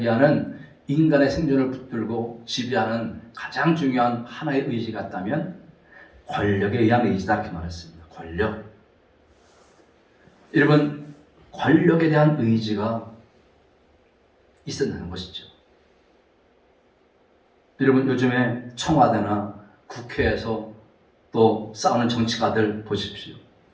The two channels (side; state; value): both; identical; correlation 1.00